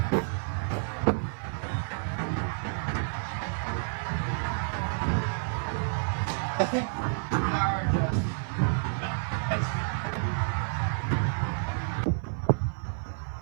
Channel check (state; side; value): silent; left; 58 dB below the other